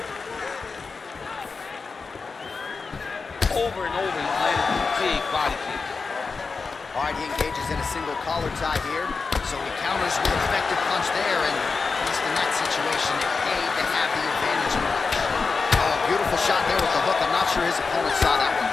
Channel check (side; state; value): right; quieter; 4.6 dB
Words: Over and over, he's landed a big body kick. All right, he engages in a single collar tie here. So he counters with an effective punch there, and at least in that situation, it paid to have the advantage in the punch. Oh, beautiful shot there with the hook. I'm not sure his opponent saw that one